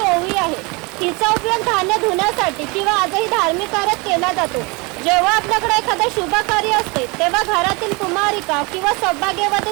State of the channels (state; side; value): quieter; left; 27.7 dB